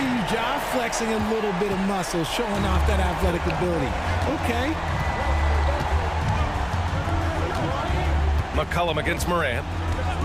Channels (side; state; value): both; identical; correlation 1.00